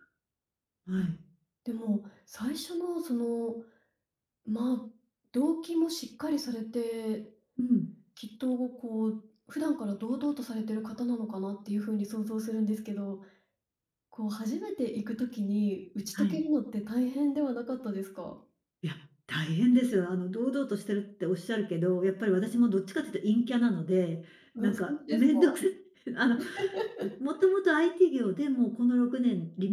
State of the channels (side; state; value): both; identical; correlation 1.00